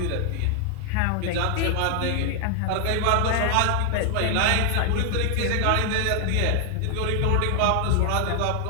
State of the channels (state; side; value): different; both; correlation 0.00